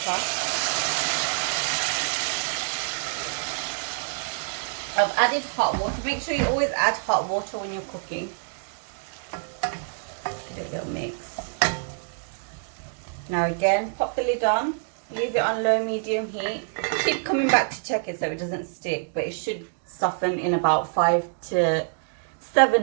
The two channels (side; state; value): left; silent; digital silence